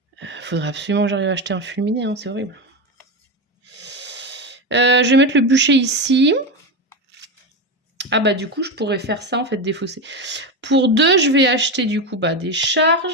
Faudrait absolument que j'arrive à acheter un fulminé, hein, c'est horrible. Je vais mettre le bûcher ici. Ah bah du coup, je pourrais faire ça en fait, défausser. Pour 2, je vais acheter du coup des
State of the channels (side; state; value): both; normal; correlation 0.16